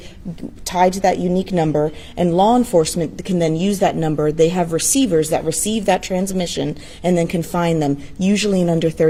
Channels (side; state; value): both; identical; correlation 1.00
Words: tied to that unique number, and law enforcement can then use that number. They have receivers that receive that transmission and then can find them, usually in under